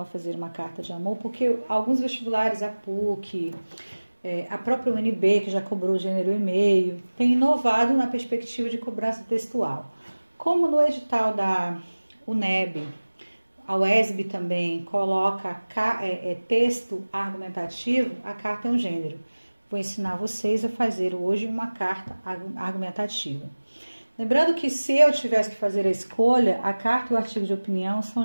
a fazer uma carta de amor, porque alguns vestibulares, a PUC, a própria UNB, que já cobrou o gênero e-mail, tem inovado na perspectiva de cobrança textual. Como no edital da UNEB, a UESB também coloca texto argumentativo, a carta é um gênero. Vou ensinar vocês a fazer hoje uma carta argumentativa. Lembrando que se eu tivesse que fazer a escolha, a carta e o artigo de opinião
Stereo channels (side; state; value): both; inverted; correlation -1.00